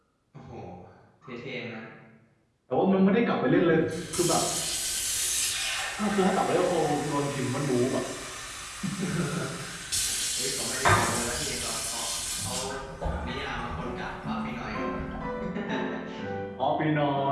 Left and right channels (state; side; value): identical; both; correlation 1.00